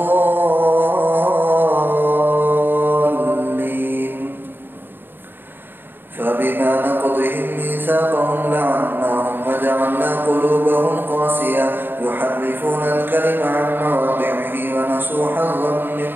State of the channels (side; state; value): left; late; 0.096 ms